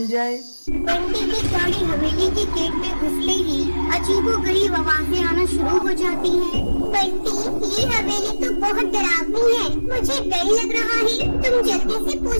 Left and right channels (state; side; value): inverted; both; correlation -1.00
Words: जाए। बंटी की गाड़ी हवेली के गेट में घुसते ही अजीबोगरीब आवाजें आना शुरू हो जाती हैं। बंटी, ये हवेली तो बहुत डरावनी है, मुझे डर लग रहा है, तुम जल्दी से